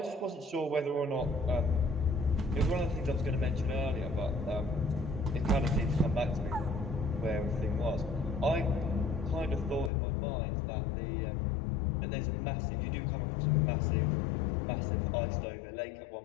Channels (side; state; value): right; drops out; at 9.9 s